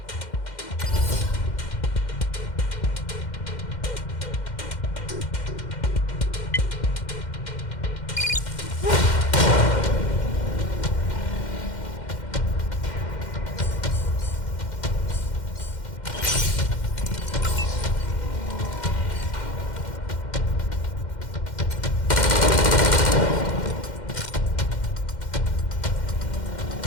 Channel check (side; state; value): right; late; 2.1 ms